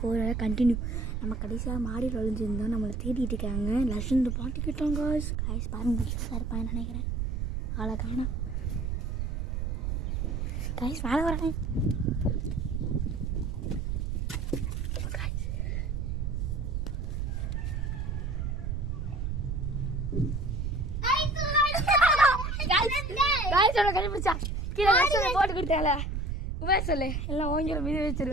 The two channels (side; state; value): right; noise; rumble, 1 dB below the sound